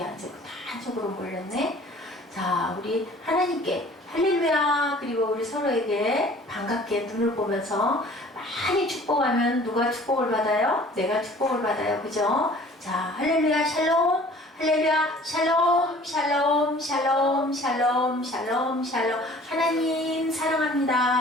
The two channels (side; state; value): both; normal; correlation 0.50